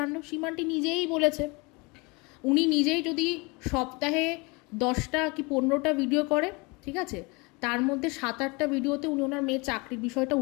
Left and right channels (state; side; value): quieter; right; 27.5 dB